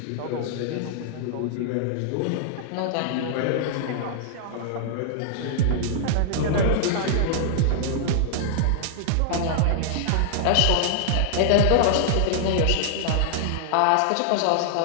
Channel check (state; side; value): different; both; correlation -0.01